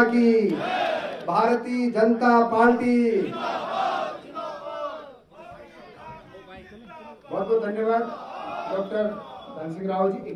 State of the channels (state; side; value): identical; both; correlation 1.00